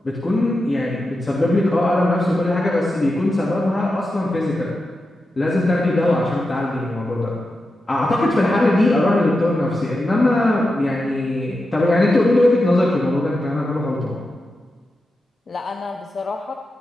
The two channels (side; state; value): both; normal; correlation 0.90